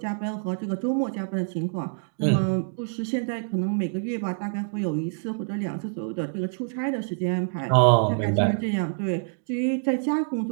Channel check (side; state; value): left; silent; digital silence